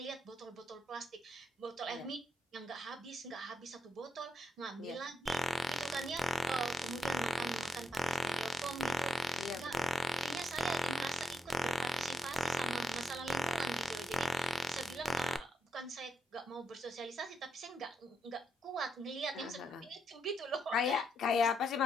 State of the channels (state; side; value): normal; both; correlation 0.81